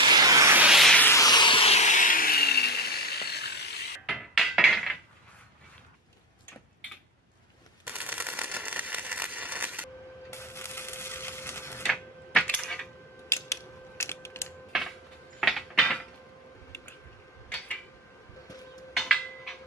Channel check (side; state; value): both; normal; correlation 0.16